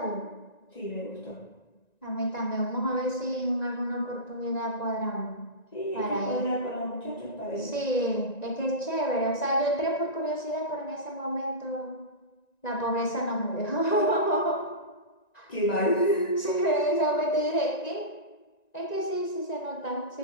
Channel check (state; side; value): late; right; 1.9 ms